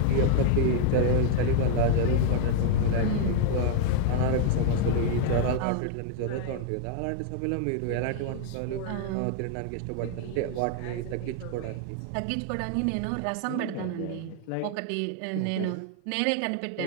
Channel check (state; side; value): different; both; correlation 0.00